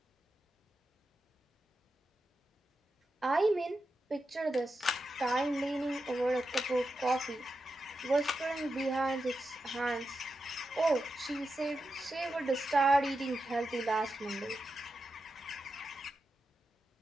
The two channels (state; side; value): normal; both; correlation 0.89